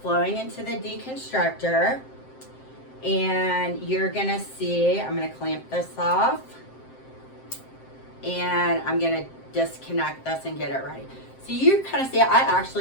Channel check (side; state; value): right; late; 7.6 ms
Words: into the deconstructor. And you're gonna see, I'm gonna clamp this off, and I'm gonna disconnect this and get it ready. So you kind of see, I